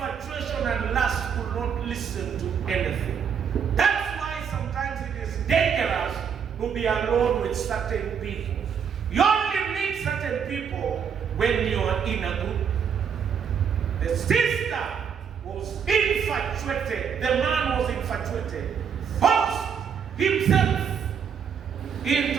and lust could not listen to anything. That's why sometimes it is dangerous to be alone with certain people. You only meet certain people when you are in a group. The sister was infatuated. The man was infatuated. Forced himself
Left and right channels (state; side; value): quieter; left; 7.3 dB